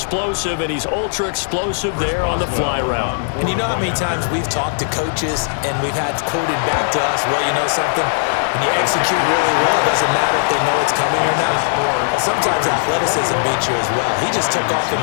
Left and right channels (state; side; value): silent; right; 56 dB below the other